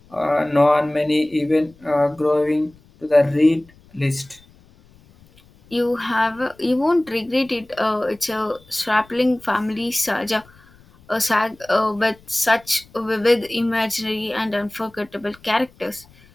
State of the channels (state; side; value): noise; left; rumble, 28 dB below the sound